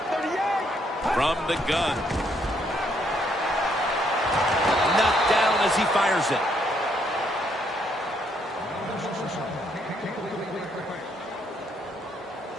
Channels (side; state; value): both; normal; correlation 0.71